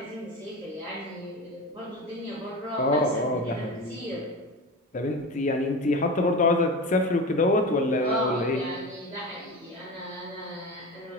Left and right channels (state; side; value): normal; both; correlation 0.27